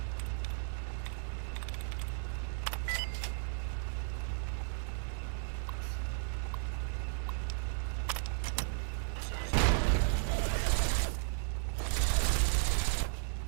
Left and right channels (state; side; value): silent; left; digital silence